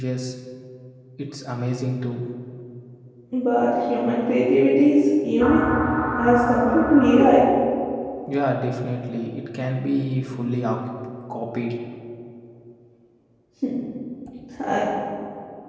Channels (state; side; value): identical; both; correlation 1.00